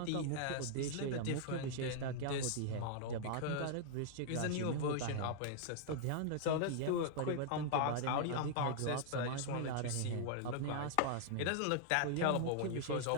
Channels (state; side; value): different; both; correlation -0.01